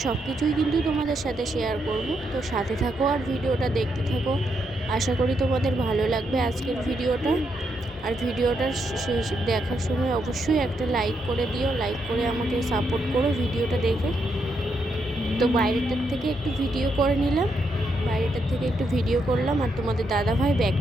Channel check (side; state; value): both; normal; correlation 0.79